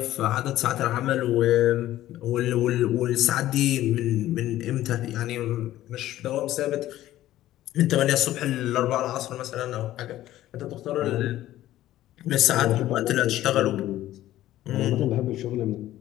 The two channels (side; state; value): right; quieter; 14.2 dB